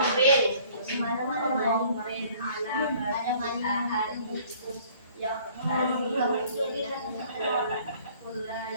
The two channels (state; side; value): inverted; both; correlation -0.55